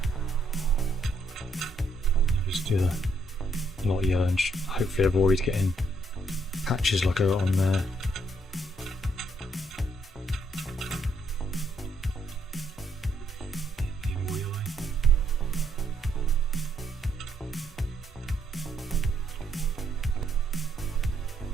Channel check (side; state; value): both; normal; correlation 0.73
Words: Just do the lot of yellow and hopefully avoid getting patches like I got on there.